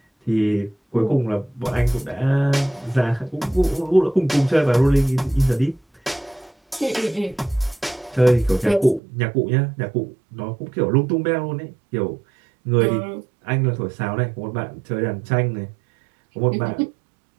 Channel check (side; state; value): left; drops out; at 9.0 s